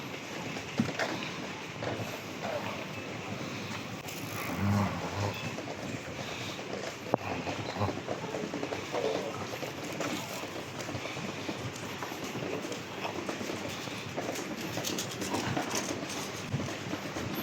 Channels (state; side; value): identical; both; correlation 1.00